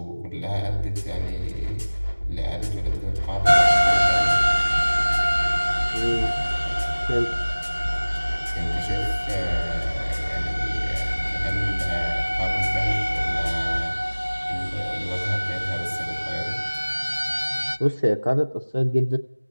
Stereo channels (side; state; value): both; inverted; correlation -1.00